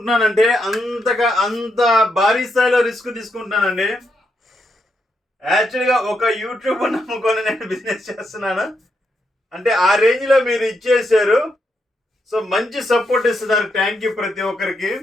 అంత భారీ స్థాయిలో రిస్క్ తీసుకుంటున్నానండి. యాక్చువల్గా ఒక యూట్యూబ్ నమ్ముకొని నేను బిజినెస్ చేస్తున్నాను. అంటే ఆ రేంజ్లో మీరు ఇచ్చేసారు. సో మంచి సపోర్ట్ ఇస్తున్నారు. థ్యాంక్ యూ ప్రతి ఒక్కరికి.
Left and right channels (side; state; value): both; normal; correlation 0.81